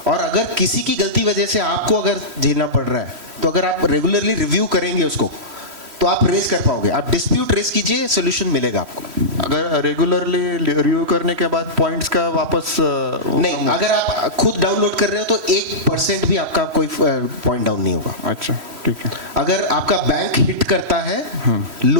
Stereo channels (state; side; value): late; left; 3.1 ms